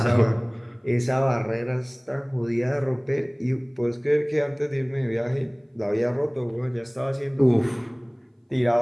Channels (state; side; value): identical; both; correlation 1.00